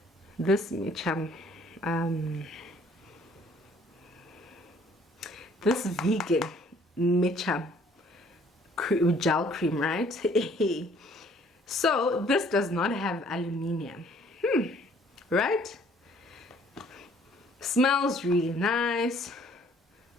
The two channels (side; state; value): both; normal; correlation 0.59